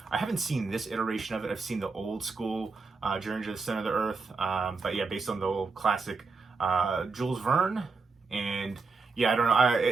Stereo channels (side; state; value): left; quieter; 4.3 dB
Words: haven't seen this iteration of it. I've seen the old school Journey to the Center of the Earth, but yeah, based on the old classic Jules Verne. And yeah, I don't know.